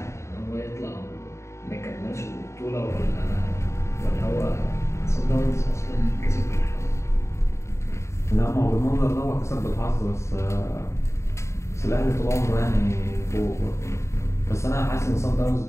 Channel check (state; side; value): late; right; 0.14 ms